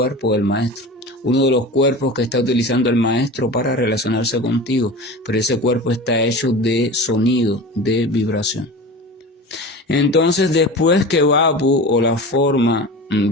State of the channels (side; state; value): both; normal; correlation 0.32